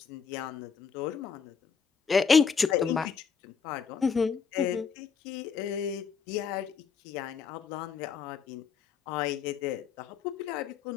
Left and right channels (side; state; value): right; quieter; 6.0 dB